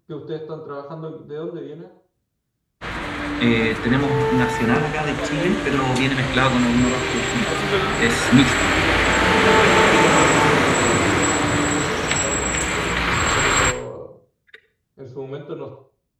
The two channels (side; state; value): both; identical; correlation 1.00